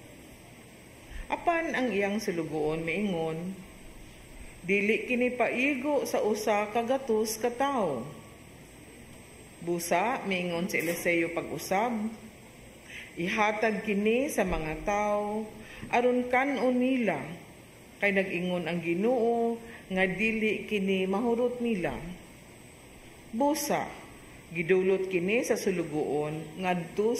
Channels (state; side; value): identical; both; correlation 1.00